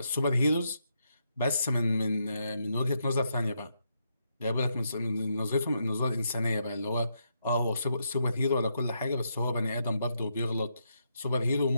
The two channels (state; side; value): inverted; both; correlation -0.80